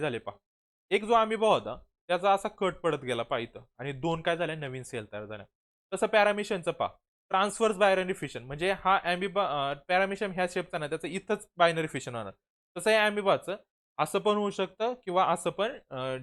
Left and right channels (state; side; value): identical; both; correlation 1.00